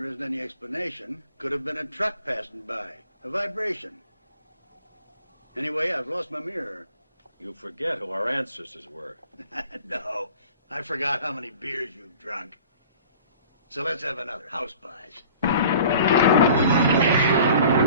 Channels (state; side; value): inverted; both; correlation -0.46